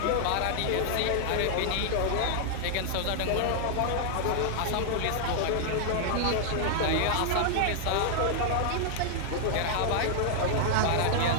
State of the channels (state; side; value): different; both; correlation 0.00